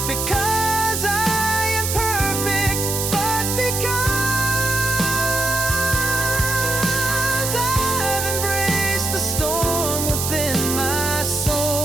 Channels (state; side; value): noise; right; hiss, 2 dB below the sound